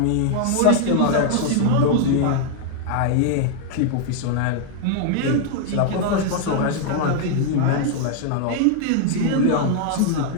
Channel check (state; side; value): different; both; correlation 0.00